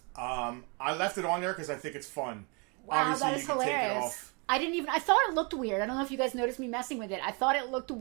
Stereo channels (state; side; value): quieter; left; 32.3 dB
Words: I left it on there because I think it's fun. Wow, Obviously, that is hilarious. I thought it looked weird. I don't know if you guys noticed me messing with it. I thought it looked